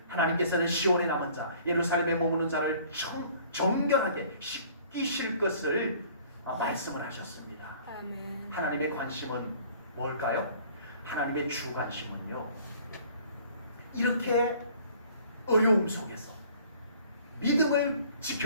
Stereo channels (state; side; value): inverted; both; correlation -0.54